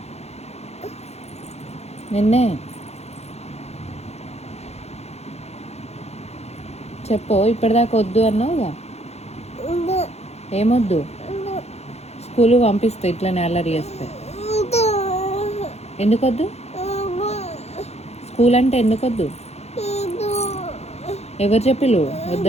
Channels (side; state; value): right; late; 0.31 ms